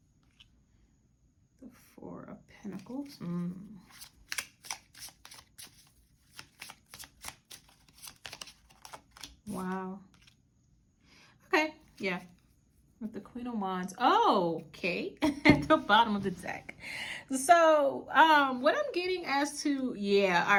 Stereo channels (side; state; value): both; identical; correlation 1.00